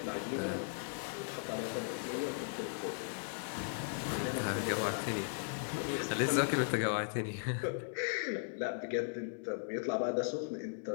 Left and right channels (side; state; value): right; silent; digital silence